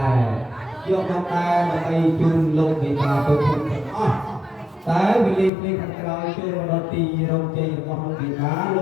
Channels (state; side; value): drops out; right; at 5.5 s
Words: do năm nay là bay chung lông người ta tôi không តែវិលីភ្លេងខាងក្រោយចូលរត់ទីរងជ័យរបស់លោកវិបាលោ